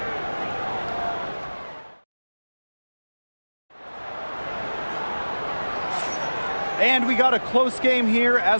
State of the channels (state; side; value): inverted; both; correlation -1.00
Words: And we got a close game here